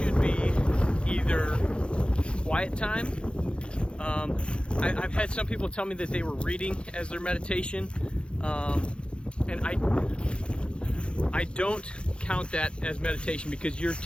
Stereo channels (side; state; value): right; late; 0.056 ms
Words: be either quiet time. I've had some people tell me that they were reading as their meditation, and I don't count that as meditation, because you're